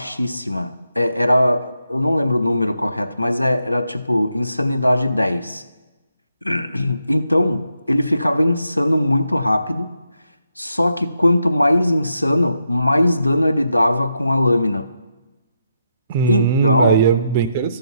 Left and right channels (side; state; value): both; inverted; correlation -0.82